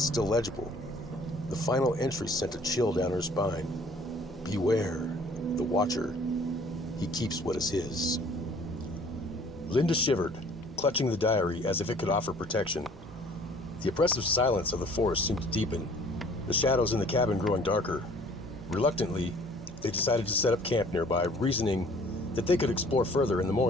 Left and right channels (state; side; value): normal; both; correlation 0.54